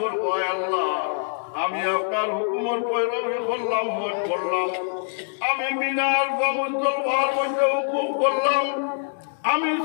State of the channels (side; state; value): right; silent; 62 dB below the other